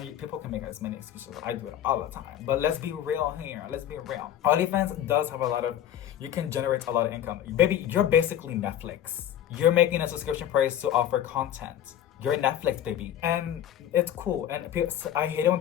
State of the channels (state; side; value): quieter; right; 10.9 dB